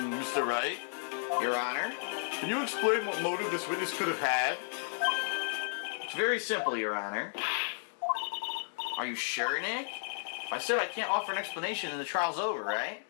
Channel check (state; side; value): silent; right; digital silence